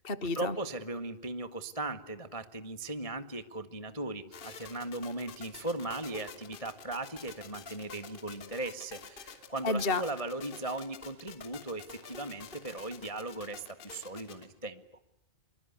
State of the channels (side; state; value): right; late; 1.7 ms